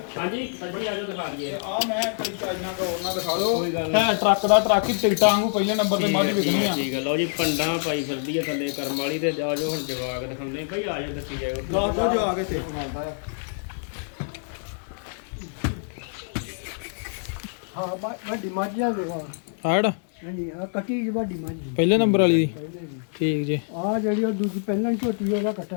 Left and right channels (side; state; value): right; silent; digital silence